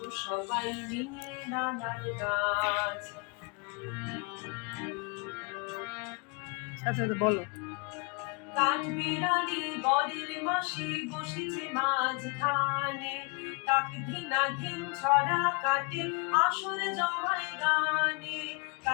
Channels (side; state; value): right; quieter; 32.0 dB